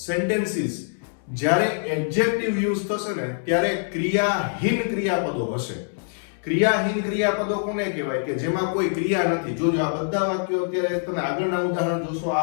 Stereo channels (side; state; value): right; silent; 61 dB below the other